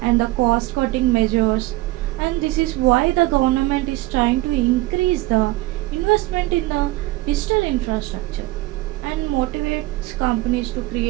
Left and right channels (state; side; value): quieter; left; 19.1 dB